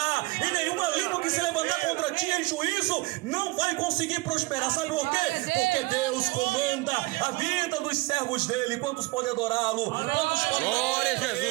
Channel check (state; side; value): quieter; left; 21.9 dB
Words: e nenhuma língua que se levantar contra ti em juízo não vai conseguir prosperar. Sabe por quê? Porque Deus comanda a vida dos servos dele. Quantos podem adorá-lo? Quantos podem glória a